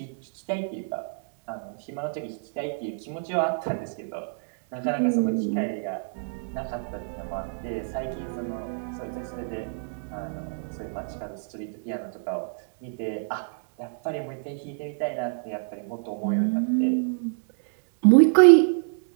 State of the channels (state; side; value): silent; left; digital silence